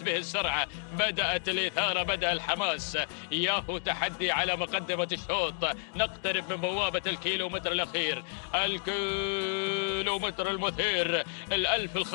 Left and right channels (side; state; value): right; silent; digital silence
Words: به السرعة بدأت الإثارة بدأ الحماس ياهو تحدي على مقدمة الشوط. نقترب من بوابة الكيلومتر الأخير الكيلومتر المثير الألف